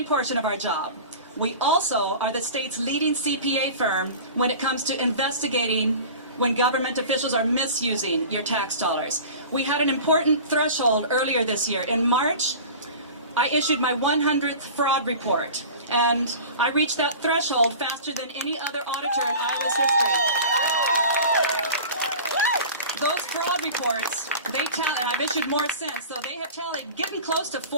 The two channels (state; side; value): inverted; both; correlation -0.37